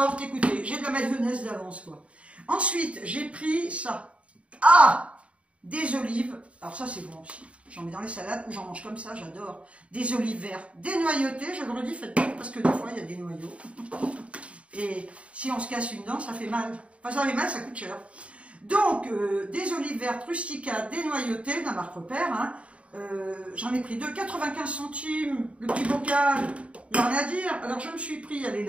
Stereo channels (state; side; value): late; left; 0.063 ms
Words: écoutez, j'ai de la mayonnaise d'avance quoi. Ensuite, j'ai pris ça. Ah, des olives. Alors ça c'est bon aussi. J'en mets dans les salades ou j'en mange comme ça, j'adore. Des olives vertes dénoyautées, je le redis, faites pas parce que des fois il y a des noyaux. Et si on se casse une dent, ça fait mal. Enfin, ça fait mal, ça coûte cher. Donc, des olives vertes rustica dénoyautées, de la marque Repère. Hein. J'en ai pris 2, 95 centimes, le petit bocal. Il n'y a rien à dire. Alors, je me suis pris, elle est